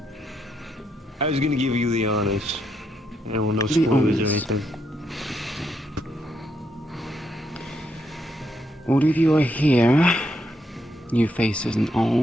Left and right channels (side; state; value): both; normal; correlation 0.78